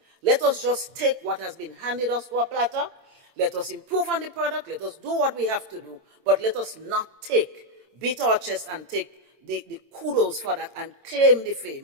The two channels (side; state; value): left; late; 8.8 ms